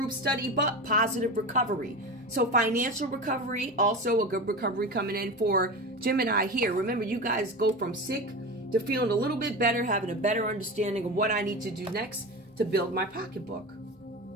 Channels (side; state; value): both; normal; correlation 0.26